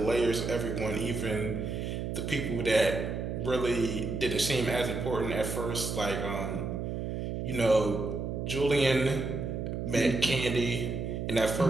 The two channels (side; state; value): right; noise; hum, 3 dB below the sound